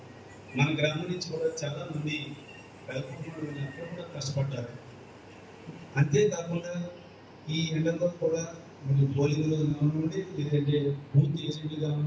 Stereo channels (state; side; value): identical; both; correlation 1.00